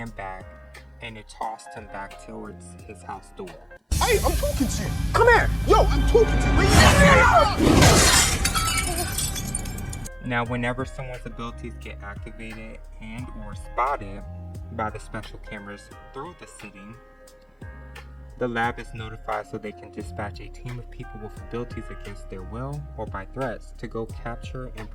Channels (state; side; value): identical; both; correlation 1.00